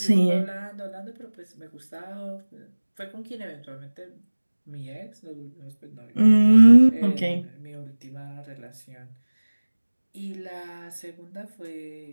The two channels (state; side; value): inverted; both; correlation -1.00